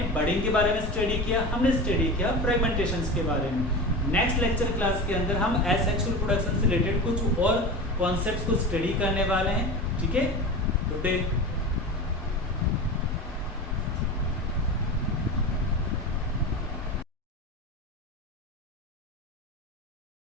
बडिंग के बारे में स्टडी किया, हमने स्टडी किया फ्रेगमेंटेशन के बारे में. नेक्स्ट लेक्चर क्लास के अंदर हम एसेक्सुअल रिप्रोडक्शन से रिलेटेड कुछ और कॉन्सेप्ट्स को स्टडी करने वाले हैं. ठीक है, गुड डे.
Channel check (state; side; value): normal; both; correlation 0.28